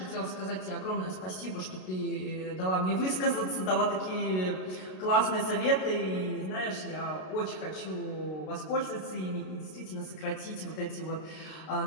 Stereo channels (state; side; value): late; right; 32 ms